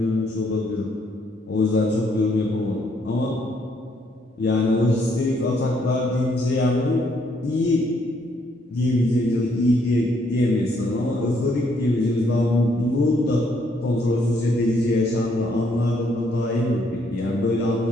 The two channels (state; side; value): normal; both; correlation 0.70